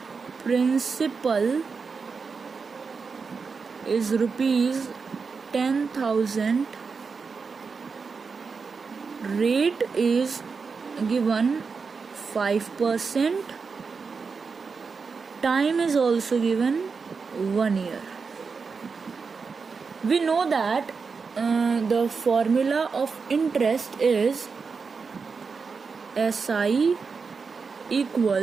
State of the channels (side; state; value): left; quieter; 5.1 dB